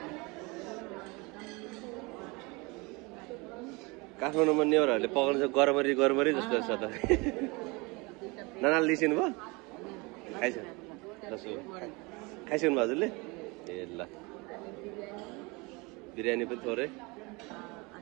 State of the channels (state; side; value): quieter; left; 26.6 dB